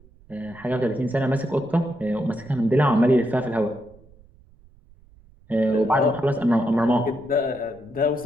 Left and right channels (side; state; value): right; noise; rumble, 26 dB below the sound